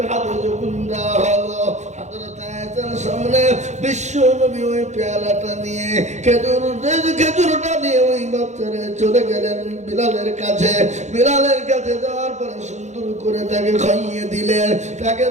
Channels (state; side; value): late; left; 0.34 ms